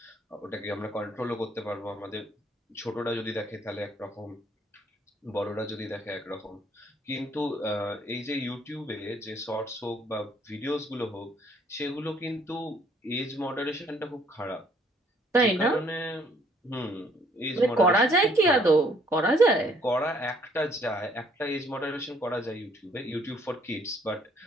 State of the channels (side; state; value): both; normal; correlation 0.64